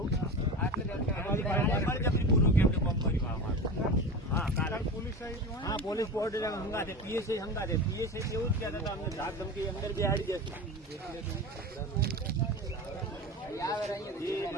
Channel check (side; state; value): both; normal; correlation 0.28